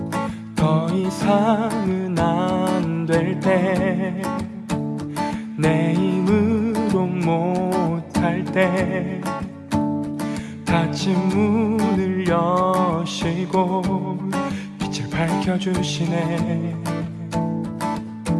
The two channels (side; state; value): both; identical; correlation 1.00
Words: 더 이상은 안 될 때 내 힘으로 못할 때 닫힌 문을 여시고 빛을 밝혀주시네.